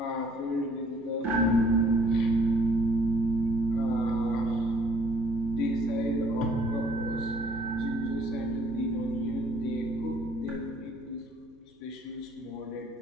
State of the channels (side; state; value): both; normal; correlation 0.60